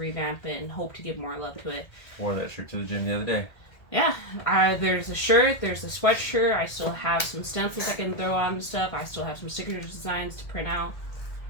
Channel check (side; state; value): right; late; 1.6 ms